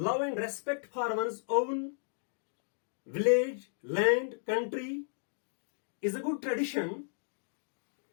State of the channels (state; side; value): silent; right; digital silence